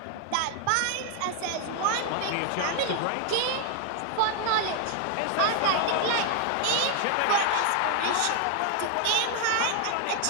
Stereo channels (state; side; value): different; both; correlation 0.00